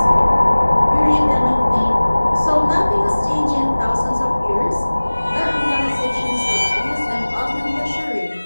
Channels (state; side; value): inverted; both; correlation -1.00